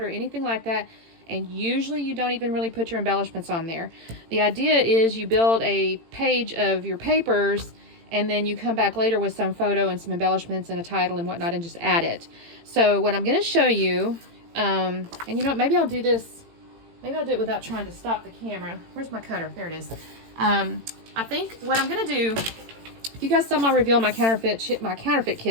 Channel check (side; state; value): left; late; 18 ms